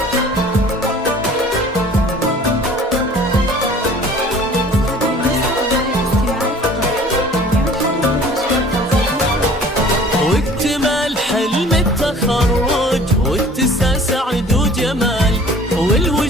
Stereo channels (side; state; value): both; normal; correlation 0.49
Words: واكتمال حلم التخرج واتساع سعد وجمال